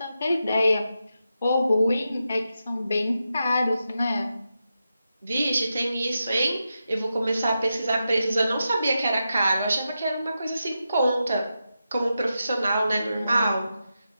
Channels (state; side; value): inverted; both; correlation -0.88